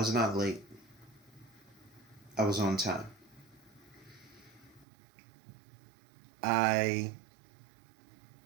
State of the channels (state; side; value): drops out; left; at 4.9 s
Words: not late. I was on time. I